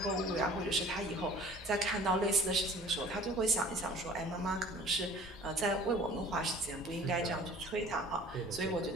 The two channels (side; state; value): both; normal; correlation 0.47